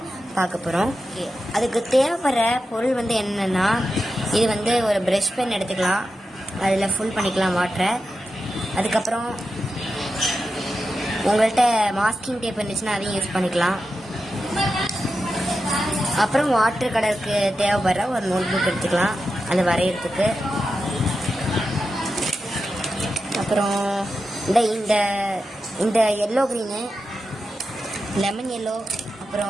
பார்க்க போகிறோம். அதுக்கு தேவைப்படுற பொருள் என்னென்னா, இது ஒரு ப்ரஷ் பென் எடுத்துக்கலாம், அதில் ஃபுல் பண்ணிக்கலாம் வாட்டரை. அதுக்கப்புறம் உங்கள்கிட்ட மாஸ்கிங் டேப் இருந்துச்சுன்னா அதையும் யூஸ் பண்ணிக்கலாம். அப்புறம் வாட்டர் கலருக்கு தேவைப்படுற ஒரு நோட் புக் எடுத்துக்கலாம் அது வரைகிறதுக்கு. அப்புறம் இந்த இந்த எல்லோ க்ரீனு, லெமன் எல்லோ,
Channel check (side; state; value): both; normal; correlation 0.90